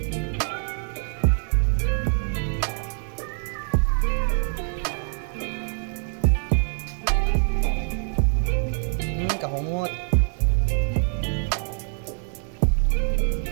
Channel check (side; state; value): left; silent; 62 dB below the other